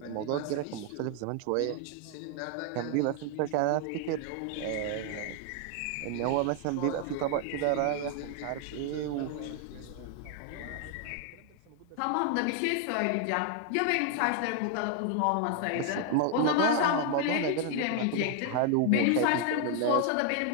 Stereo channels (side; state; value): both; different; correlation 0.00